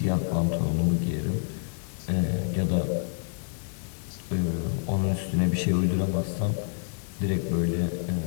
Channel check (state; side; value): silent; right; digital silence